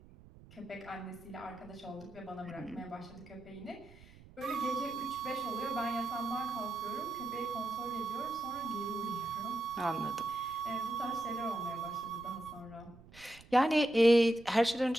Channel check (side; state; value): right; noise; rumble, 22 dB below the sound